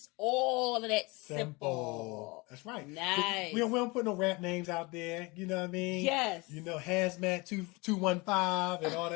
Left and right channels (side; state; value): right; quieter; 25.8 dB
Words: all of that simple. That's right. Nice. We don't put no rap names out there. You know what I mean? Yes. You know, Hazmat 215 and all